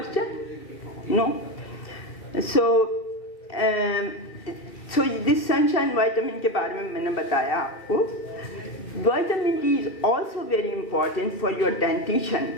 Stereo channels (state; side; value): late; right; 2.7 ms